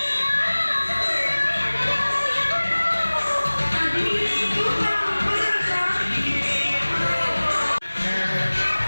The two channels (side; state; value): both; inverted; correlation -1.00